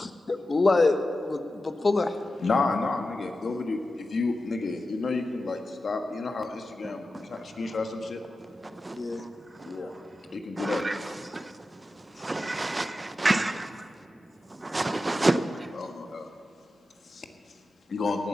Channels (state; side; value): normal; both; correlation 0.92